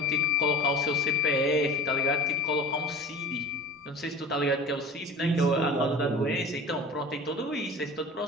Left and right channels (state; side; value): normal; both; correlation 0.39